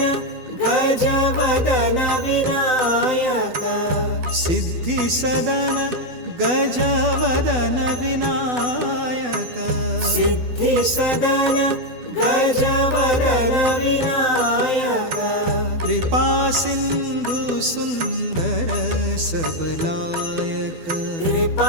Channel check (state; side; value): late; left; 12 ms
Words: गजवदन विनायक सिद्धि सदन गजवदन विनायक सिद्धि सदन गजवदन विनायक कृपा सिंधु सुंदर सबलायक